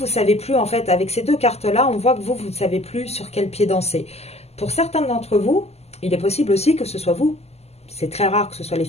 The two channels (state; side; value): late; right; 0.30 ms